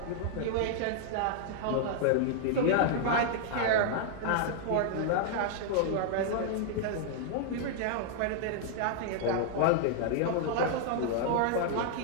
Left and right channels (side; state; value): both; different; correlation -0.01